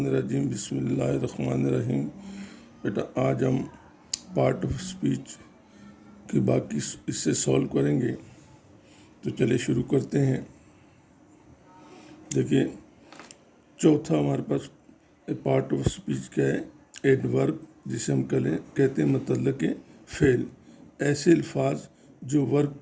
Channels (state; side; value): identical; both; correlation 1.00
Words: الرجیم، بسم اللہ الرحمن الرحیم۔ بیٹا آج ہم پارٹ آف اسپیچ کی باقی اس سے سولو کریں گے، تو چلے شروع کرتے ہیں۔ دیکھیے چوتھا ہمارے پاس پارٹ آف اسپیچ کیا ہے؟ ایڈورب، جسے ہم کہتے ہیں متعلق فعل، ایسے الفاظ جو